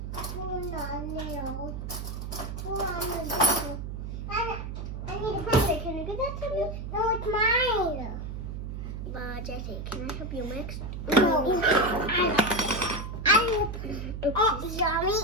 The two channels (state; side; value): noise; right; hum, 6 dB below the sound